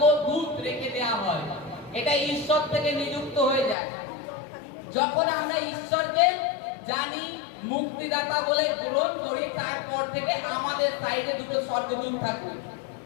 রেখে দেওয়া হয়। এটা ঈশ্বর থেকে নিযুক্ত হয়ে যায়। যখন আমরা ঈশ্বরকে জানি, মুক্তিদাতা বলে গ্রহণ করি, তারপর থেকে আমাদের সাইডে দুটো স্বর্গদূত থাকে,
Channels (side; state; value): right; drops out; at 3.8 s